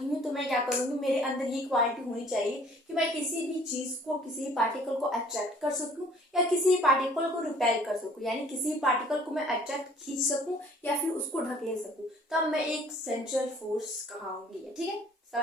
हूँ तो मैं क्या करूंगी, मेरे अंदर ये क्वालिटी होनी चाहिए कि मैं किसी भी चीज को, किसी भी पार्टिकल को अट्रैक्ट कर सकूं या किसी भी पार्टिकल को रिपेल कर सकूं, यानी किसी भी पार्टिकल को मैं अट्रैक्ट खींच सकूं या फिर उसको ढकेल सकूं, तब मैं एक सेंट्रल फोर्स कहूंगी, ठीक है।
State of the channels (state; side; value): normal; both; correlation 0.55